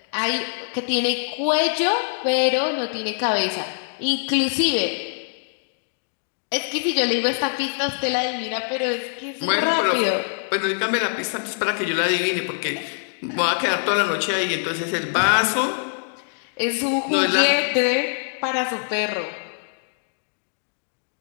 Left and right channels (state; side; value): silent; right; digital silence